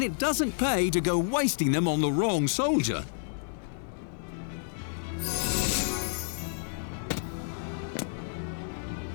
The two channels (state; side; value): silent; right; digital silence